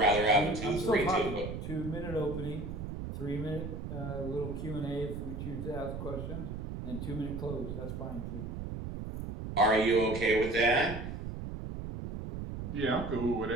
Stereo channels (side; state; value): right; noise; rumble, 6 dB below the sound